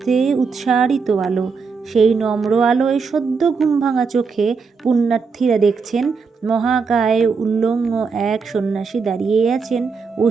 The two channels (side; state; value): left; quieter; 5.1 dB